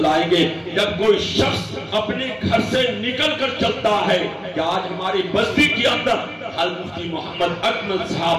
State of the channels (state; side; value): identical; both; correlation 1.00